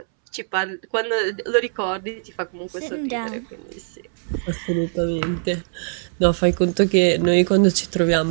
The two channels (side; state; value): left; silent; 64 dB below the other